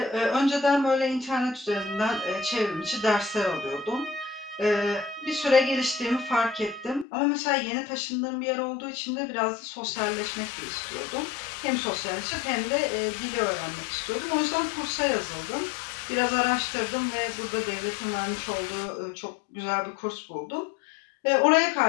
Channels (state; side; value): drops out; right; at 7.1 s